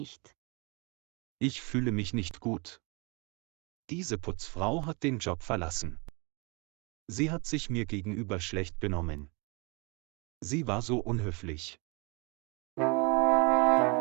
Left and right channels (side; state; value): left; quieter; 30.4 dB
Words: Ich fühle mich nicht gut. Diese Putzfrau hat den Job verlassen. Sie hat sich mir gegenüber schlecht benommen. Sie war so unhöflich.